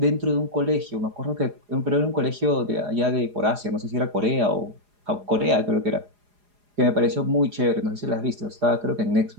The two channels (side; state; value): left; late; 4.9 ms